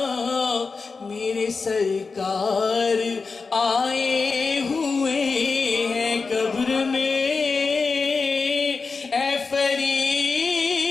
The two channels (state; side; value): quieter; right; 4.5 dB